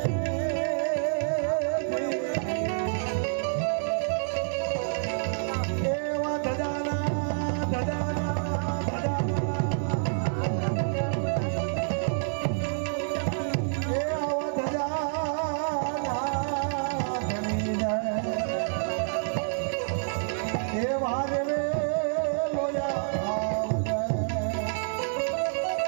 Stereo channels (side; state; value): left; silent; 59 dB below the other